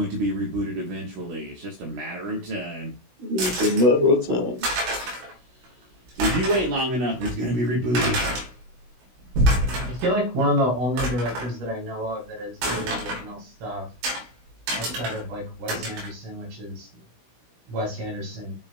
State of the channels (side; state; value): left; late; 16 ms